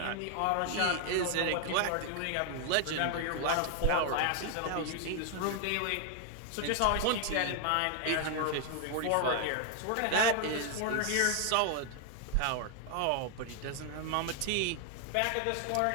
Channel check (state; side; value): different; both; correlation 0.00